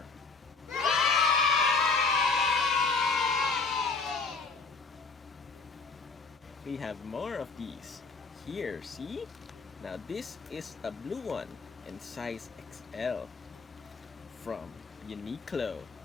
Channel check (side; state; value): right; quieter; 4.3 dB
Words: We have more of these. Here, see? Now this is a blue one in size XL from Uniqlo.